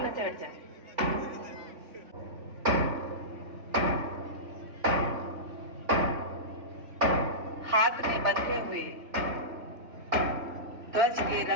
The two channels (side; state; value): left; late; 3.3 ms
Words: से हट जाए। हाथ में बंधे हुए ध्वज के